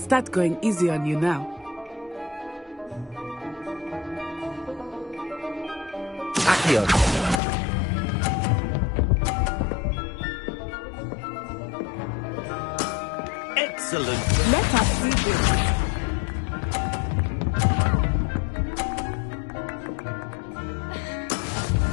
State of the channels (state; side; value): drops out; right; at 7.4 s